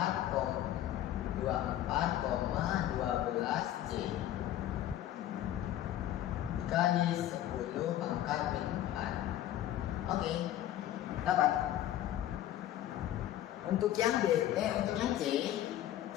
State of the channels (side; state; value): right; quieter; 12.6 dB